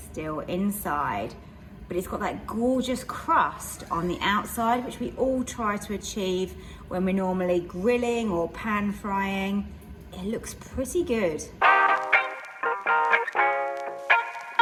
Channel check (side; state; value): both; identical; correlation 1.00